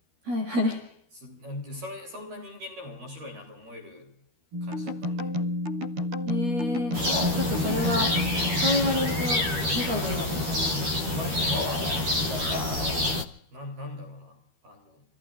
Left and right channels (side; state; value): left; late; 13 ms